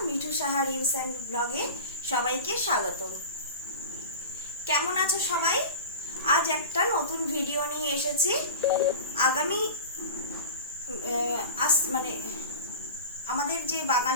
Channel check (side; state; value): both; inverted; correlation -0.31